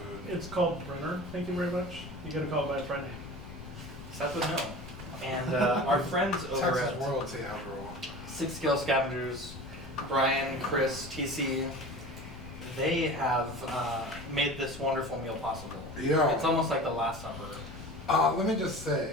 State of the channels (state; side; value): noise; left; rumble, 14 dB below the sound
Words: It's called Brenner. Thank you very much. You gotta call it by its right name. Seth would know. And our friends over Texas at royalty, after all. Six Scale Scavengers, Brian, Chris, TC, they have made this wonderful meal possible. Yeah. It's almost like the Last Supper. Let me just